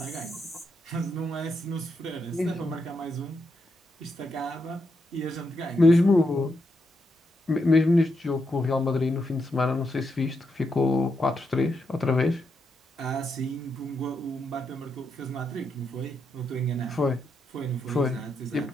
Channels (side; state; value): both; normal; correlation 0.82